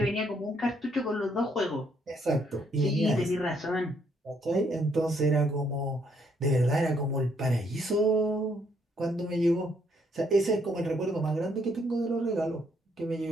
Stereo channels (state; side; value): normal; both; correlation 0.71